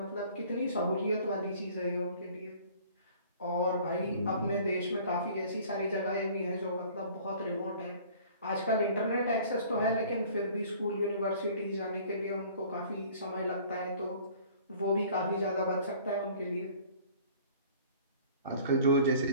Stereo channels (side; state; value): both; inverted; correlation -0.50